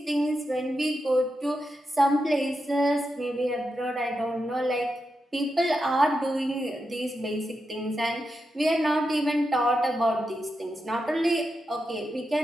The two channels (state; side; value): normal; both; correlation 0.87